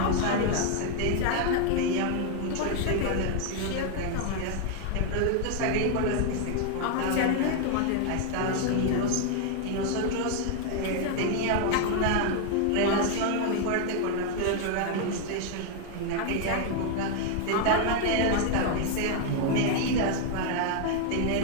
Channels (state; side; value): different; both; correlation 0.01